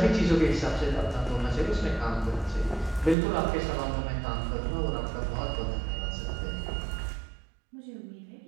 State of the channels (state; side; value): drops out; left; at 3.2 s